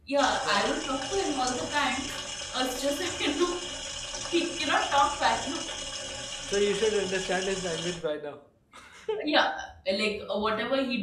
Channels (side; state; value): both; identical; correlation 1.00